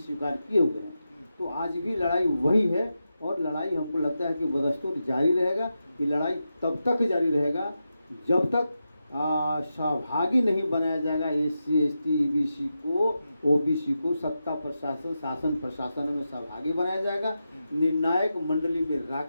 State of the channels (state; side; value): inverted; both; correlation -0.89